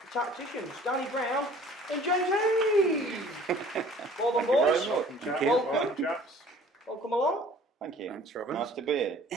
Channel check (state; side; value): normal; both; correlation 0.52